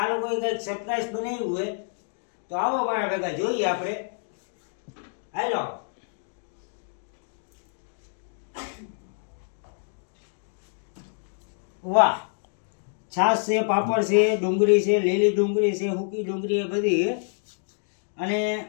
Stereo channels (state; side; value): silent; right; digital silence